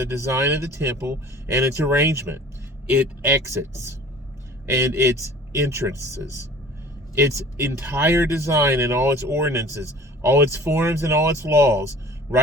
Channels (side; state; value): both; normal; correlation 0.47